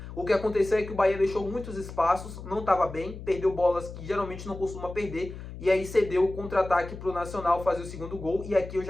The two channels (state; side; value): noise; left; hum, 12 dB below the sound